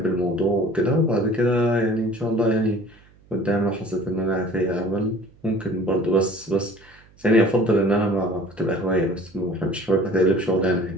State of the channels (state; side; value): noise; right; hum, 29 dB below the sound